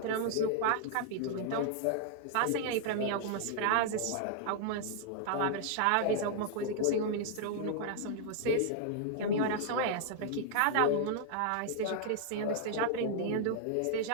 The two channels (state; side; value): different; both; correlation -0.01